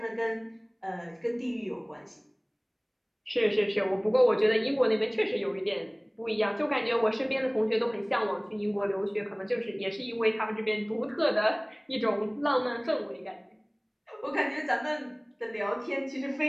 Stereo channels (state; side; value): identical; both; correlation 1.00